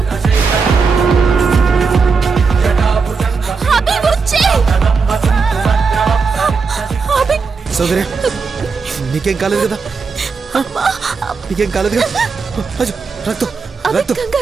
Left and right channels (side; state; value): left; quieter; 5.0 dB